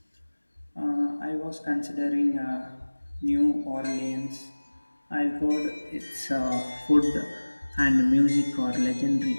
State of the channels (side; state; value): both; inverted; correlation -1.00